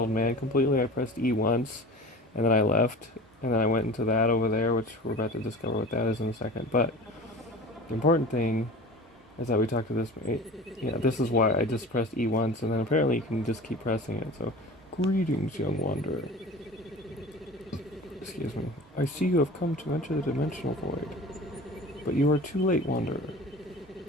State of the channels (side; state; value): both; normal; correlation 0.38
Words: man completely. I pressed E once, and then I left, and then I went into that over there, which we're about to discover what that is in a second. But the important thing is that we talked to this. Yeah, this is why I just pressed E once, and then apparently you can just keep pressing it. So, greetings, young wanderer. Excuse me. I see you have come to enter the dimensional void, but you are too late, wanderer.